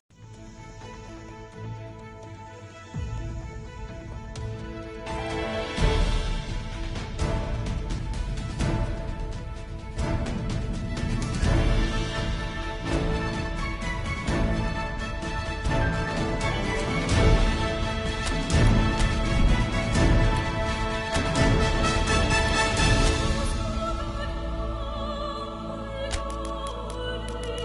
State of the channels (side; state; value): both; identical; correlation 1.00